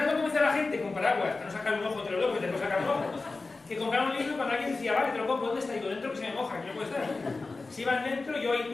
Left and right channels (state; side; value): quieter; right; 3.7 dB